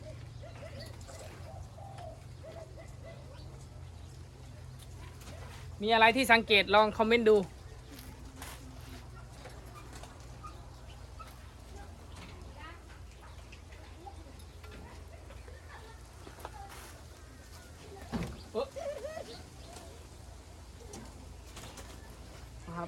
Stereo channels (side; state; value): both; identical; correlation 1.00